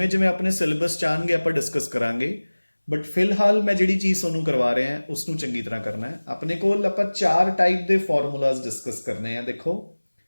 ਜਿਵੇਂ ਆਪਣੇ ਸਿਲੇਬਸ 'ਚ ਆਉਣਗੇ ਆਪਾਂ ਡਿਸਕਸ ਕਰਾਂਗੇ। ਬਟ ਫਿਲਹਾਲ ਮੈਂ ਜਿਹੜੀ ਚੀਜ਼ ਤੁਹਾਨੂੰ ਕਰਵਾ ਰਿਹਾ ਉਸ ਨੂੰ ਚੰਗੀ ਤਰ੍ਹਾਂ ਕਰਨਾ ਹੈ। ਆਪਣੇ ਕੋਲ ਆਪਾਂ 4 ਟਾਈਪ ਦੇ ਫਾਰਮੂਲਾਜ਼ ਡਿਸਕਸ ਕਰਨੇ ਆ। ਦੇਖੋ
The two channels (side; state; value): both; inverted; correlation -1.00